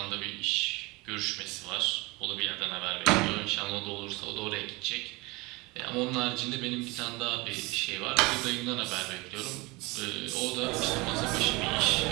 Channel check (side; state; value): left; quieter; 24.1 dB